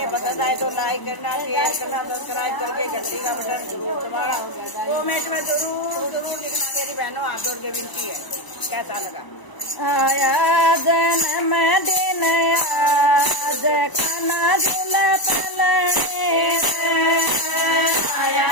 पसंद आए तो लाइक करना, शेयर करना, सब्सक्राइब करके घंटी का बटन जरूर दबाना। कमेंट में जरूर जरूर लिखना मेरी बहनों, हाथ जोड़ के विनती है कैसा लगा। आया जन्म दिन आज खाना झूला पलने, आया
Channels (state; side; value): late; right; 1.0 ms